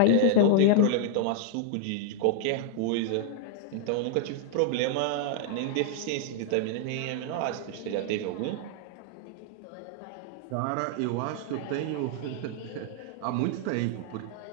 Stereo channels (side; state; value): both; different; correlation -0.01